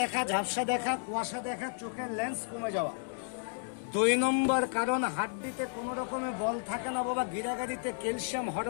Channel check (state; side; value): silent; right; digital silence